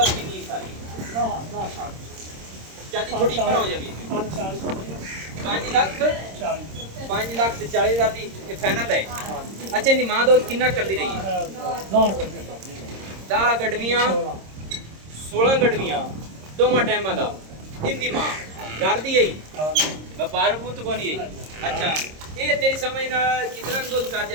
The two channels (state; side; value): late; left; 26 ms